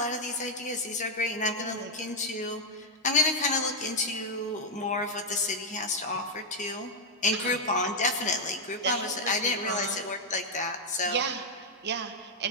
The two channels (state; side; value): normal; both; correlation -0.02